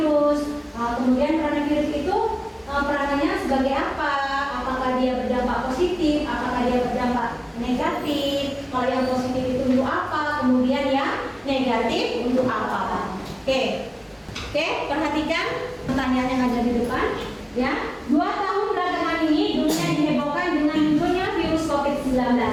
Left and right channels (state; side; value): identical; both; correlation 1.00